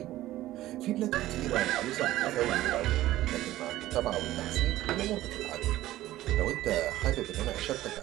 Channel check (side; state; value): left; quieter; 15.3 dB